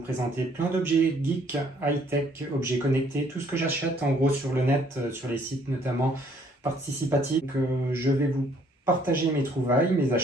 plein d'objets geek, high-tech, objets connectés, tout ce que j'achète en gros sur le net, sur les sites notamment participatifs. Je vais vous partager mes trouvailles, mes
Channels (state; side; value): normal; both; correlation 0.63